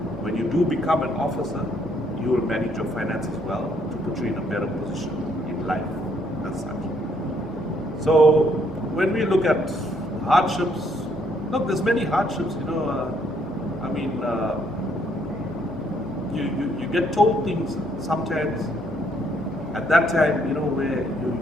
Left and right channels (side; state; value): both; normal; correlation 0.69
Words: when you do become an officer, you will manage your finances well to put you in a better position in life as such. So when we look at hardships, look, there's many hardships, you get told things sometimes at that time, where